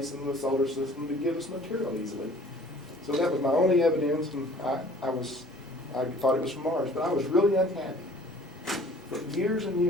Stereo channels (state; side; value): normal; both; correlation 0.52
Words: in the solar system to give us material easily. So that was my only evidence, and I thought it was from Mars, but I was really unhappy for years and